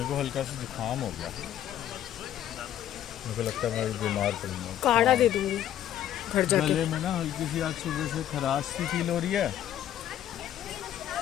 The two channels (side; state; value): right; quieter; 11.3 dB